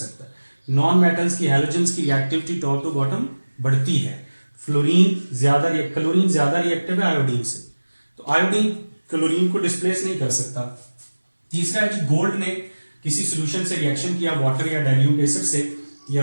है। नॉन मेटल्स की हैलोजेंस की रिएक्टिविटी टॉप टू बॉटम बढ़ती है, क्लोरीन ज्यादा रिएक्टिव है आयोडीन से, तो आयोडीन क्लोरीन को डिस्प्लेस नहीं कर सकता। तीसरा है कि गोल्ड ने किसी सॉल्यूशन से रिएक्शन किया वाटर या डाइल्यूट एसिड से,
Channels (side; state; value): both; inverted; correlation -1.00